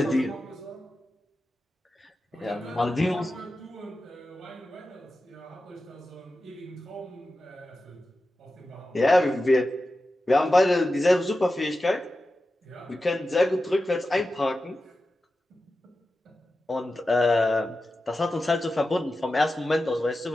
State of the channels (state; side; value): normal; both; correlation 0.92